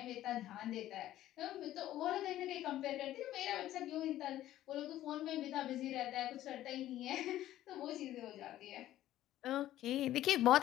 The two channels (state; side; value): quieter; right; 13.7 dB